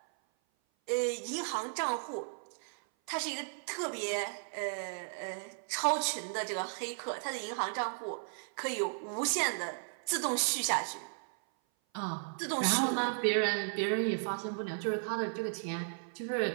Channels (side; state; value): left; silent; 54 dB below the other